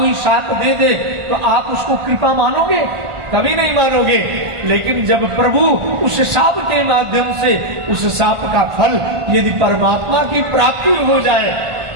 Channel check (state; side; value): late; left; 1.5 ms